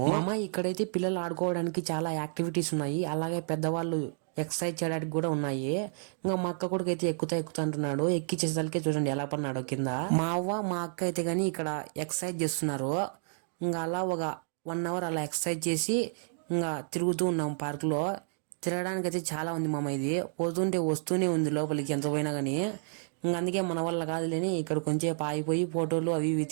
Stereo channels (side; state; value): left; silent; digital silence